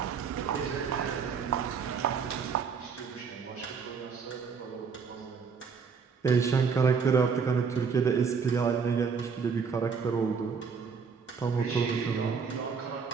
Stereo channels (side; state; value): left; quieter; 5.8 dB